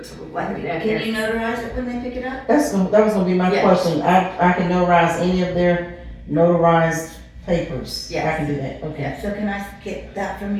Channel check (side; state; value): both; identical; correlation 1.00